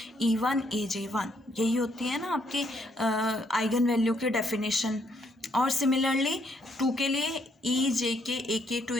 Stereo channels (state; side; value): normal; both; correlation 0.72